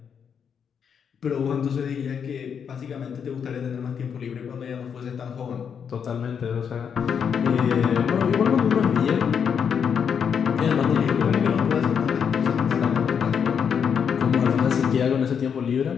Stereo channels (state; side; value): quieter; right; 7.2 dB